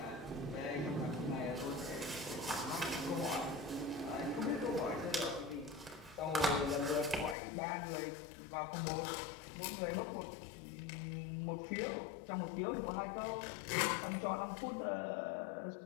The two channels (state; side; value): drops out; right; at 7.4 s